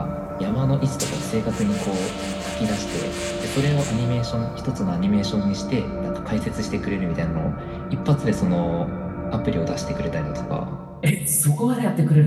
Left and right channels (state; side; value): identical; both; correlation 1.00